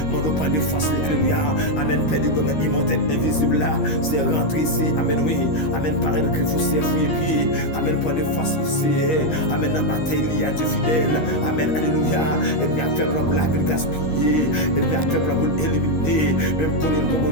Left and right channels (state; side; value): late; right; 13 ms